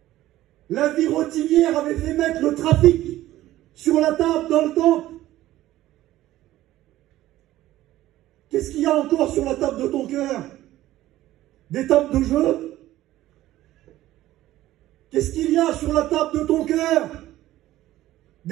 La vie rotinière avait fait mettre le trafic sur la table dans le temple. Qu'est-ce qu'il y a encore sur la table de ton cœur? Des tables de jeu? Qu'est-ce qu'il y a sur la table de ton cœur?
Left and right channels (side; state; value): left; quieter; 15.0 dB